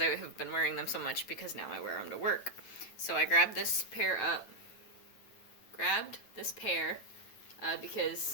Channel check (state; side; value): late; right; 9.1 ms